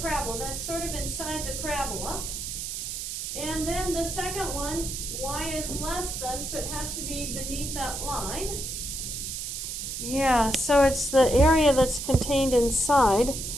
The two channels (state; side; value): noise; right; hiss, 5 dB below the sound